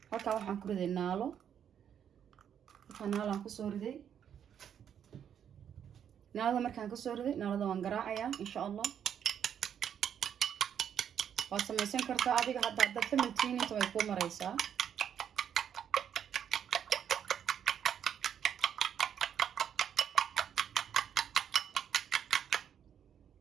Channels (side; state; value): left; quieter; 8.7 dB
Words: halka waxaan ku riday naalo aan ku soo riday naalada markaan ka soo riday naalada waan garaacayaa insha Allah waa samaysan kartaa adiga hadda familkiina inta way ku maraysaa